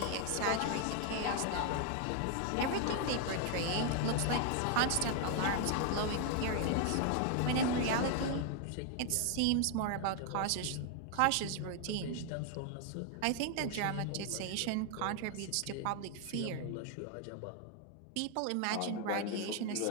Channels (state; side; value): different; both; correlation 0.00